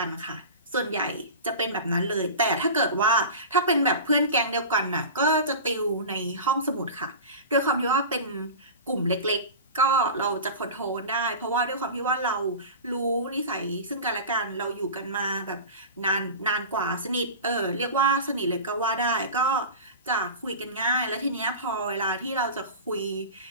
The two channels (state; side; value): inverted; both; correlation -0.32